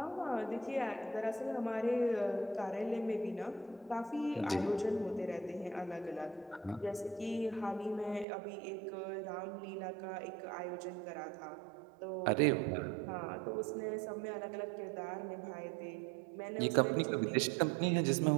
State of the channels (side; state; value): left; drops out; at 8.2 s